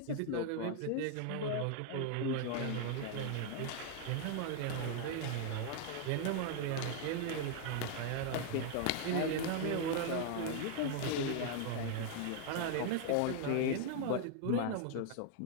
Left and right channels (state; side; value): different; both; correlation 0.00